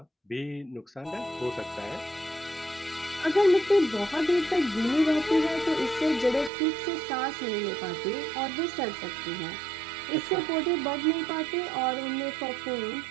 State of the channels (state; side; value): drops out; left; at 6.5 s